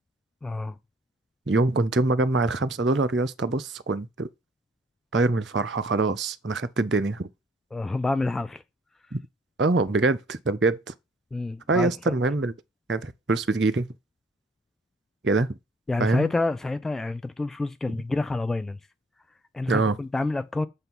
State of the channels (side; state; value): both; normal; correlation 0.59